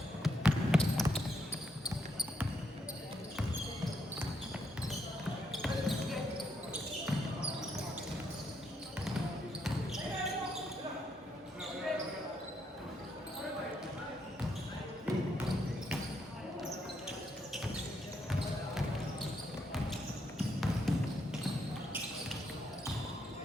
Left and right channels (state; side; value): normal; both; correlation 0.77